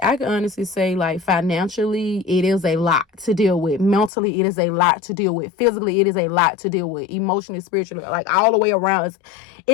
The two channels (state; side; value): drops out; right; at 4.1 s